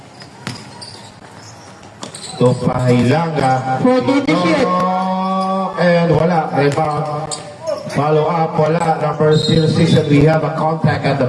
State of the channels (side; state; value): both; identical; correlation 1.00